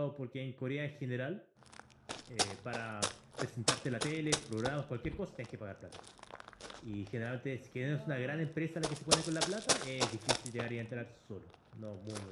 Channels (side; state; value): both; identical; correlation 1.00